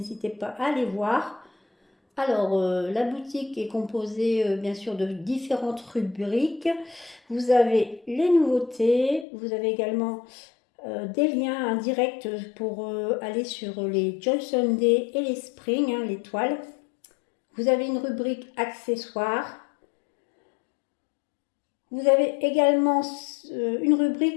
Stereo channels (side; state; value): right; drops out; at 9.2 s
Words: pas à les voir. Alors, la boutique est composée bien sûr de différentes rubriques. Vous avez les nouveautés, vous avez également des liens indirects pour aller sur les Joy Sunday et les Spring, les toiles. Vous avez une rubrique accessoires. Vous avez également une